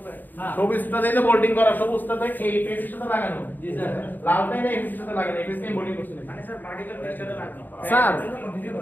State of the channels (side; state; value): right; late; 0.089 ms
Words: না। সবুজটা দিয়ে বোল্ডিং করা, সবুজটাতে এই পেজের সাথে লাগানো, জি স্যার। লালটা এই পেজের সাথে লাগানো, এই পেজে বোল্ডিং করছেন। মানে স্যার ভার্টিক্যাল পেজটাতে লাগানো। স্যার